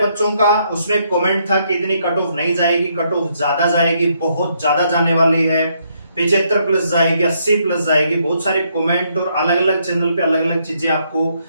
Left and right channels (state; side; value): inverted; both; correlation -0.73